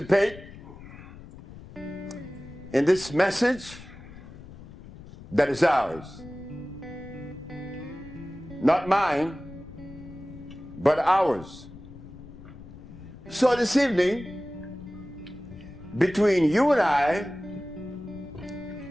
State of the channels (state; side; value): noise; left; rumble, 16 dB below the sound